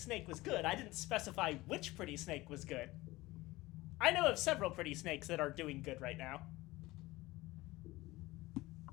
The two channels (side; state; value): right; quieter; 19.5 dB